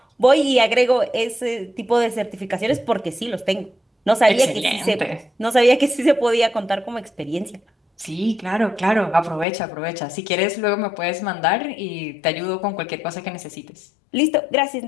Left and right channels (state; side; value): drops out; right; at 9.5 s